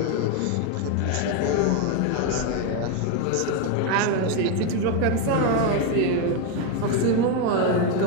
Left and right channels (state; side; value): different; both; correlation 0.02